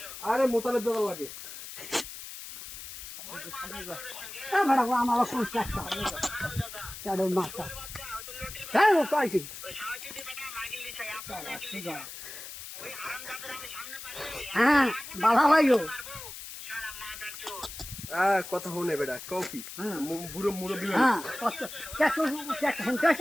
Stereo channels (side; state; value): left; noise; hiss, 11 dB below the sound